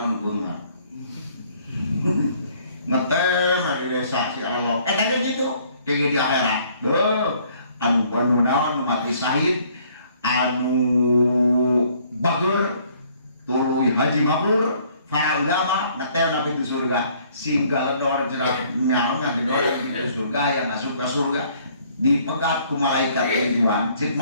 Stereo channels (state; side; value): inverted; both; correlation -0.61